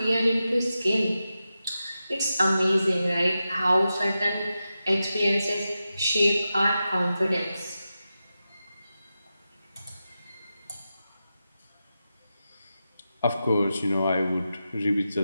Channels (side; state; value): both; inverted; correlation -0.91